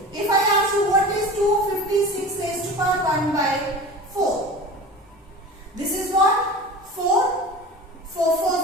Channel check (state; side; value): normal; both; correlation 0.35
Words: If I ask you what is 256 raised to power 1 by 4, this is what? 4 for